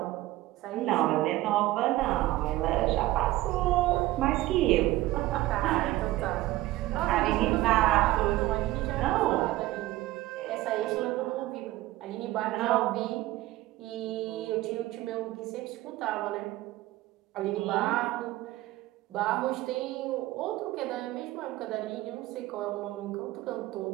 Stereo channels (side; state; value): left; quieter; 17.1 dB